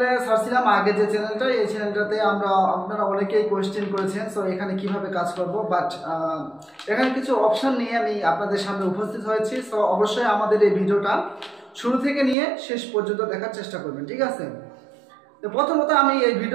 ছাড়ছিলাম আগে, যে চ্যানেলটা, এই চ্যানেলটাতে আপনারা অনেকেই কোয়েশ্চেন করেছেন সো এখানে কিভাবে কাজ করব, বাট এখানে কিছু অপশন নিয়ে আমি আপনাদের সামনে উপস্থিত হয়েছি। সো অবশ্যই আমাদের এই ভিডিওটা শুরু থেকে নিয়ে শেষ পর্যন্ত দেখার চেষ্টা করবেন, ঠিক আছে? তো প্রথমত আমি এই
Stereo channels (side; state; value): left; drops out; at 12.4 s